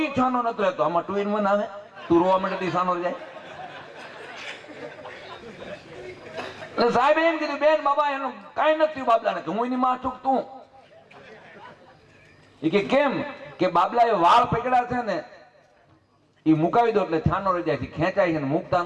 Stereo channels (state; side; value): identical; both; correlation 1.00